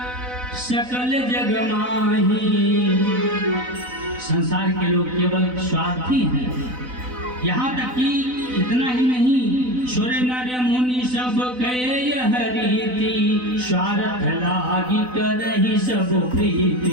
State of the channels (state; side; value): late; left; 4.0 ms